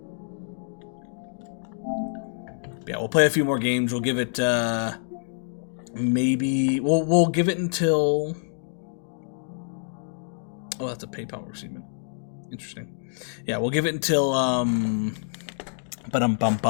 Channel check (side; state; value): right; silent; digital silence